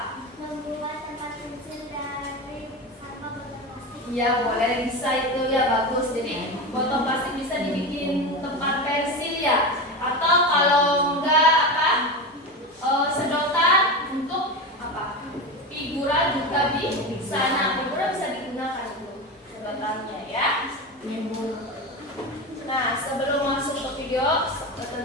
Membuat tempat pensil dari sampah botol plastik. Iya, boleh, bisa itu ya, bagus. Jadi botol plastik bisa dibikin tempat pensil ya. Atau kalau enggak apa sedotan untuk apa figura juga bisa. Nah, figura bisa digunakan itu sedotannya ya. Nah, sebelum masuk ke video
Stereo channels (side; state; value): both; normal; correlation 0.22